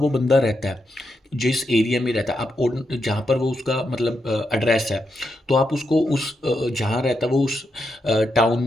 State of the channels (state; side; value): normal; both; correlation 0.83